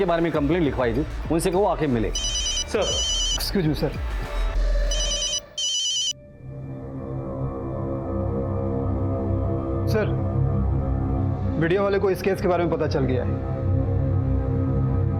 बारे में कंप्लेंट लिखवाई थी, उनसे कहो आके मिले। Sir excuse me sir. Sir video वाले को इस केस के बारे में पता चल गया है।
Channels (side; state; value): both; identical; correlation 1.00